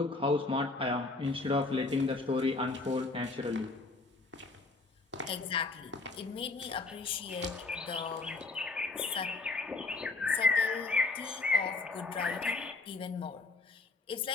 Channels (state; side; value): quieter; right; 3.5 dB